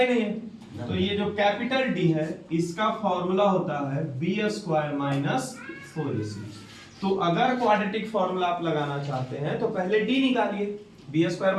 नहीं है, तो ये जो कैपिटल D है इसका फॉर्मूला होता है b स्क्वायर माइनस 4ac। तो अगर क्वाड्रेटिक फॉर्मूला आप लगाना चाहते हैं तो पहले d निकालिए, b स्क्वायर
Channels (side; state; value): both; identical; correlation 1.00